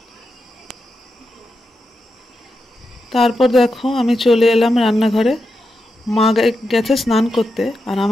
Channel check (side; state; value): both; normal; correlation 0.87